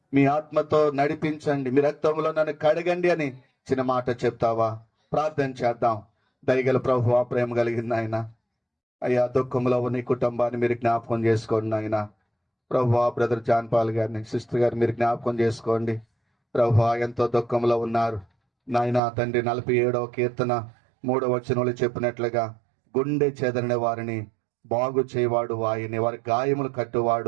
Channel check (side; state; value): left; drops out; at 19.0 s